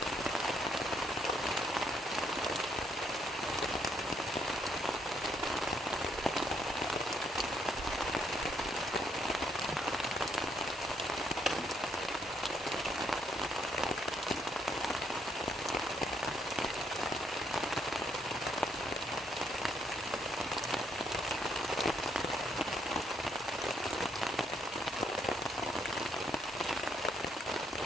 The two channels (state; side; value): normal; both; correlation 0.72